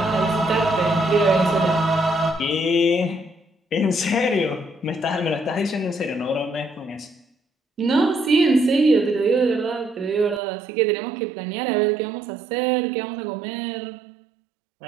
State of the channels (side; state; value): left; drops out; at 10.4 s